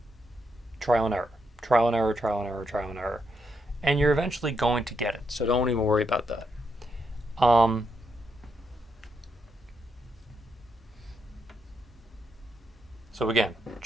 trial and error, trial and error, trial and error, trial and error, and you're eventually going to get it. So don't even worry about that. So again,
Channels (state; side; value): normal; both; correlation 0.80